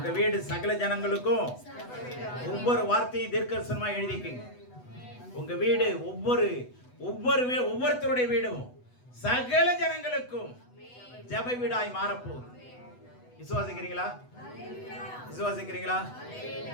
வீடு சகல ஜனங்களுக்கும் ஒவ்வொரு வார்த்தையும் தீர்க்கதரிசனமா எழுதிக்கங்க. உங்க வீடு ஒவ்வொருத்தருடைய வீடும் சகல ஜனங்களுக்கும் ஜெப வீடாய் மாறப்போகுது. விசுவாசிக்கிறீங்களா? விசுவாசிக்கிறீங்களா?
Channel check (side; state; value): right; late; 8.1 ms